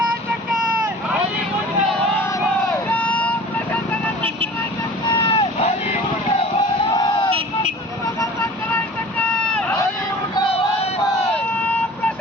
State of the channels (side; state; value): both; normal; correlation 0.43